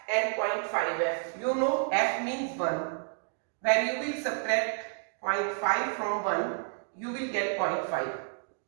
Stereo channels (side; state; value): left; silent; 58 dB below the other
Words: and 0.5f, you know f means 1. When you will subtract 0.5 from 1, you will get 0.5.